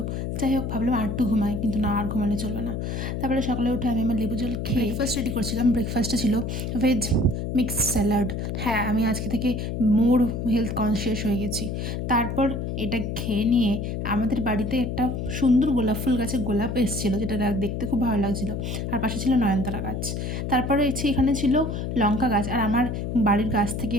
যাই হোক, ভাবলাম আর একটু ঘুমাই, কিন্তু না, আর ঘুমালে চলবে না। তারপরে সকালে উঠে আমি আমার লেবু জল খেয়ে ব্রেকফাস্ট রেডি করছিলাম। ব্রেকফাস্টে ছিল ভেজ মিক্স স্যালাড। হ্যাঁ, আমি আজকে থেকে মোর হেলথ কনসিয়াস হয়ে গেছি। তারপর এটা খেয়ে নিয়ে আমাদের বাড়িতে একটা সুন্দর গোলাপ ফুল গাছে গোলাপ এসেছিলো, যেটা দেখতে খুব ভালো লাগছিলো। আর পাশে ছিল নয়নতারা গাছ। তারপরে এখানে ছিল লঙ্কা গাছ। আর আমার বাড়ির গাছ থেকে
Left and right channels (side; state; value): left; noise; hum, 3 dB below the sound